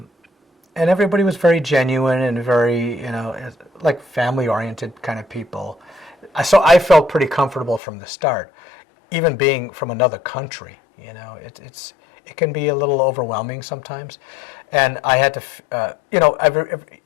everybody was very genuine and very, like family-oriented kind of people. So I felt pretty comfortable from the start, even being from another country. It can be a little overwhelming sometimes, and I had to,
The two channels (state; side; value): drops out; right; at 7.8 s